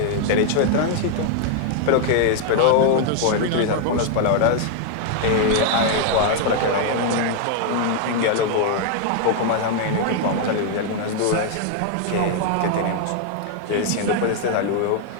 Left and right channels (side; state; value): both; different; correlation 0.00